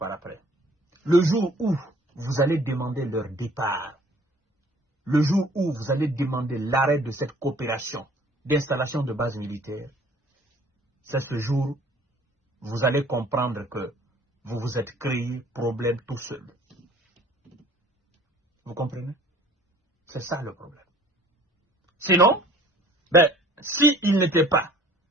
après? Le jour où vous allez demander leur départ, le jour où vous allez demander l'arrêt de cette coopération d'installation de bases militaires, c'est ce jour où vous allez comprendre que vous vous êtes créé problème tout seul. Vous comprenez? C'est ça le problème. Sinon, s'il n'était pas,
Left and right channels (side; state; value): both; normal; correlation 0.53